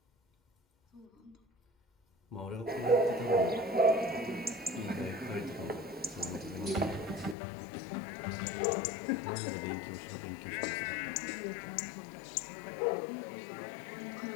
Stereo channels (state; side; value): drops out; right; at 7.4 s